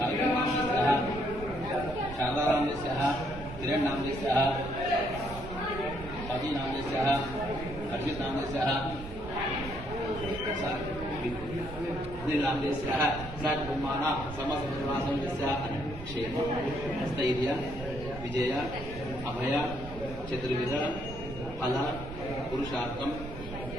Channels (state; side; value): noise; right; rumble, 11 dB below the sound